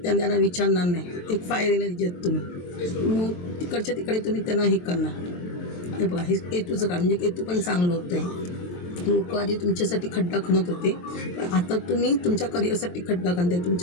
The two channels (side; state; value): right; late; 23 ms